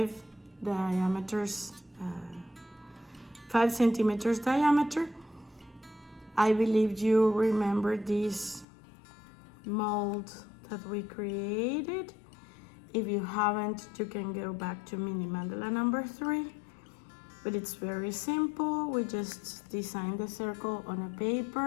diameters, 5 centimeters diameter. I believe you remember this mold that we created. If you haven't, you can go back to mini mandala number 3. But it's very simple. We just design the circle on a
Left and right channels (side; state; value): right; drops out; at 8.7 s